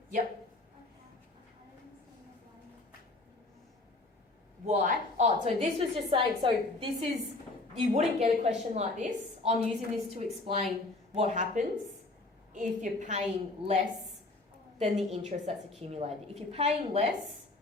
Yep. Why? Oh, so this was just saying, so this is, you wouldn't get a question like this. I'm using this to explain what happens if you're paying less than the interest that's accumulated. If you're paying less,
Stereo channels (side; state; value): right; quieter; 3.1 dB